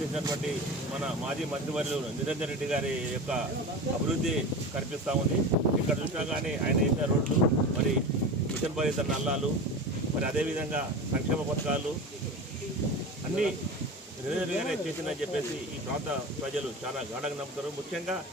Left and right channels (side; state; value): both; normal; correlation 0.29